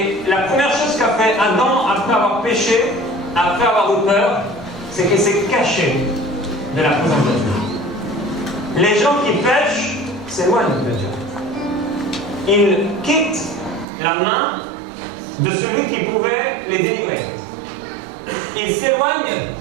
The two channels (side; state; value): left; drops out; at 13.9 s